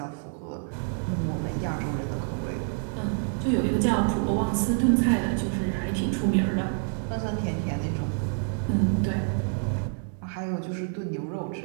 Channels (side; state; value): left; silent; 55 dB below the other